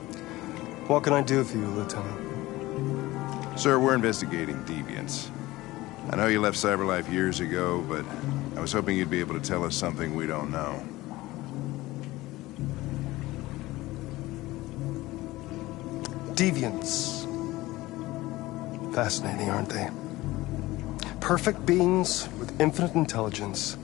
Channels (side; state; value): right; quieter; 18.5 dB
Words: What can I do for you, Lieutenant? Sir, we're investigating deviants. I know you left CyberLife years ago, but I was hoping you'd be able to tell us something we don't know. Deviants. Fascinating, aren't they? Perfect beings with infinite intelligence.